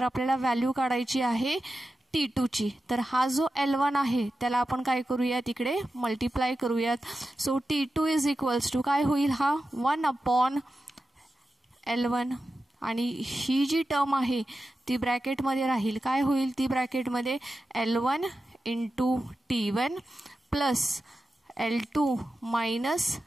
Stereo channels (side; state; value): both; normal; correlation 0.92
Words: आपल्याला व्हॅल्यू काढायची आहे T2 ची. तर हा जो L1 आहे त्याला आपण काय करूयात, इकडे मल्टिप्लाय करूयात. So T2 is equals to काय होईल, हा 1 अपॉन L1 आणि ही जी टर्म आहे ती ब्रॅकेटमध्ये राहील. काय होईल ती ब्रॅकेटमध्ये, L1 into T1 plus L2 minus